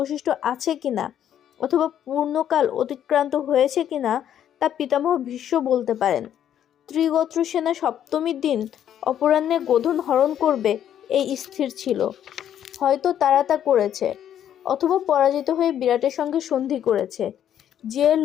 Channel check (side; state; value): right; quieter; 10.2 dB